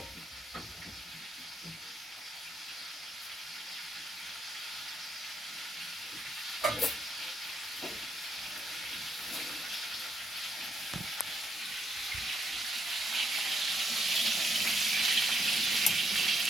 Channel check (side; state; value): both; normal; correlation 0.76